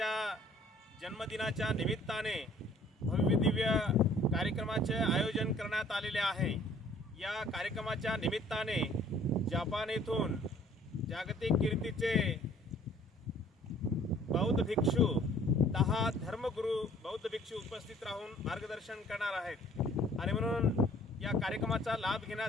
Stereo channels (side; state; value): both; normal; correlation 0.56